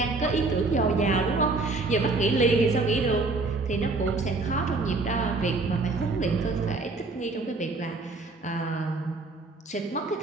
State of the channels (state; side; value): quieter; left; 3.5 dB